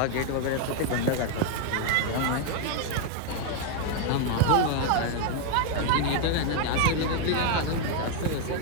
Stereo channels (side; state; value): both; different; correlation 0.00